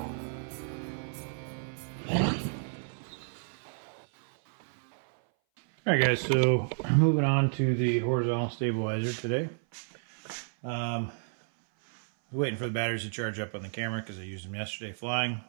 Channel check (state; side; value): silent; left; 57 dB below the other